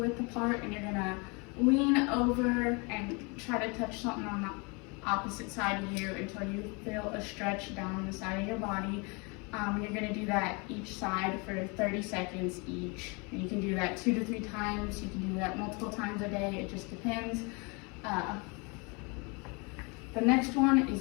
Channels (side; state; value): right; quieter; 30.6 dB